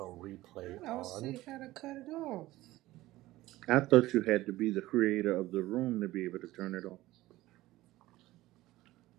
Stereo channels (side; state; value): left; quieter; 17.2 dB